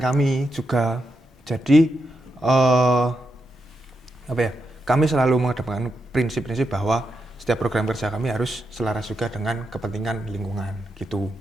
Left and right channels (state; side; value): normal; both; correlation 0.85